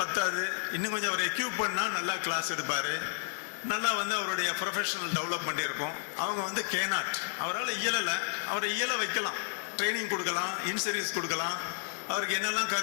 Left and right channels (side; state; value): right; silent; 57 dB below the other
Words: பத்தாது, இன்னும் கொஞ்சம் அவர் எக்யூப் பண்ணால் நல்லா கிளாஸ் எடுப்பார், நல்லா அவருடைய ப்ரொஃபஷனல் டெவலப்மெண்ட் இருக்கும். அவங்க கேனாட், அவரால் இயலலை, அவரை இயல வைக்கலாம், ட்ரைனிங் கொடுக்கலாம், இன்சர்வீஸ் கொடுக்கலாம், அவருக்கு என்னெல்லாம்